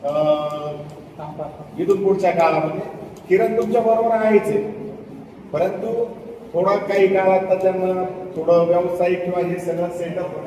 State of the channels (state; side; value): identical; both; correlation 1.00